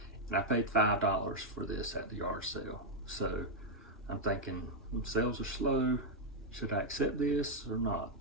and I paid $5 for this at the yard sale. So I'm thinking, sales are slow, should I accept this or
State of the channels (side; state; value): both; normal; correlation -0.02